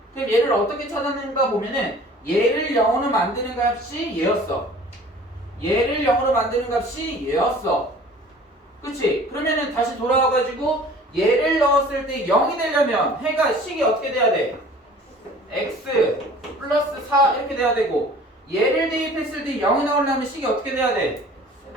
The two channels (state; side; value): normal; both; correlation 0.47